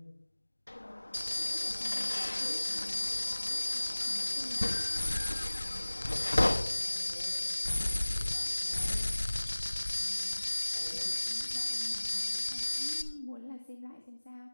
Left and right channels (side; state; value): both; inverted; correlation -1.00